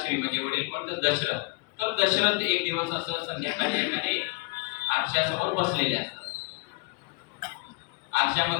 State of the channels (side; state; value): right; quieter; 27.5 dB